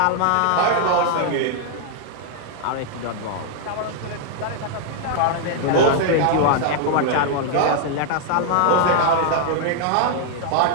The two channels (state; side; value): different; both; correlation 0.00